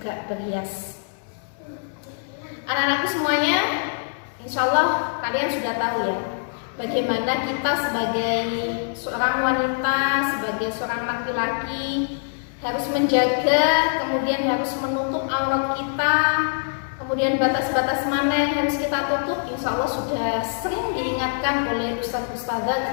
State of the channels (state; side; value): silent; right; digital silence